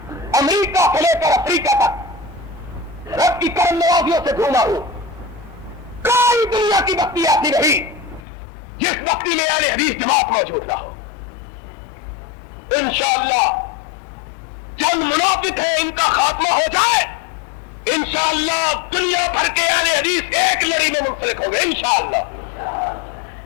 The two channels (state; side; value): drops out; right; at 8.2 s